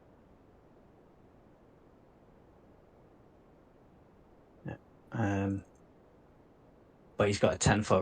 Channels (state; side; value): identical; both; correlation 1.00